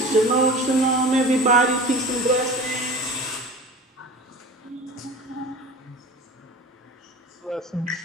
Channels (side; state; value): both; normal; correlation 0.36